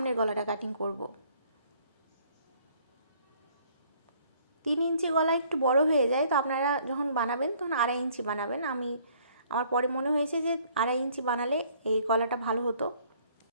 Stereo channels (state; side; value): inverted; both; correlation -0.60